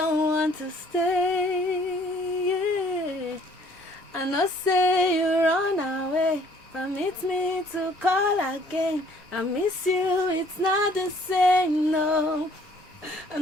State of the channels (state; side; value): normal; both; correlation 0.59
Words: want to stay. Yeah. I know say you run away. Permit me to call again. I miss you, it's not the same, no. I